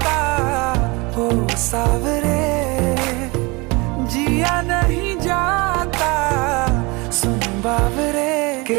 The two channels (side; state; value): left; quieter; 26.2 dB